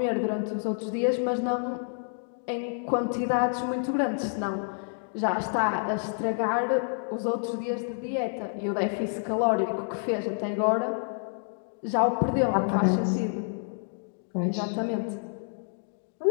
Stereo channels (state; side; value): silent; right; digital silence